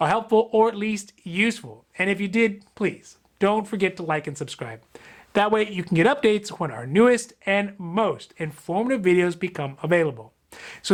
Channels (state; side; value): identical; both; correlation 1.00